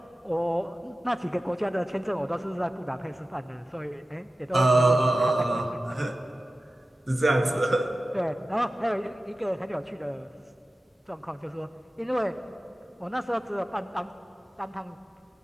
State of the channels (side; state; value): both; normal; correlation 0.95